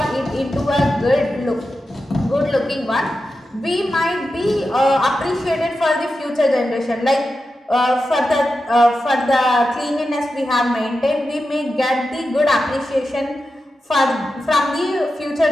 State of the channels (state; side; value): normal; both; correlation 0.91